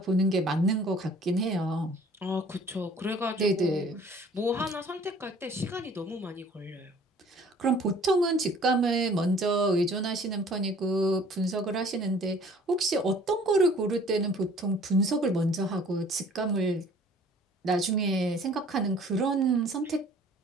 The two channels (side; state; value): both; normal; correlation 0.53